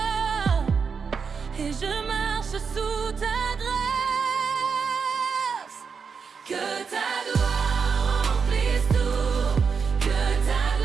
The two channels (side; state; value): left; quieter; 5.8 dB